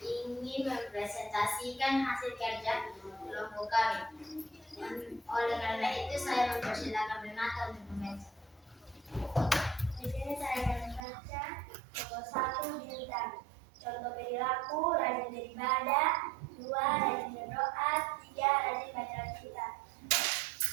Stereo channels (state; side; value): drops out; left; at 11.1 s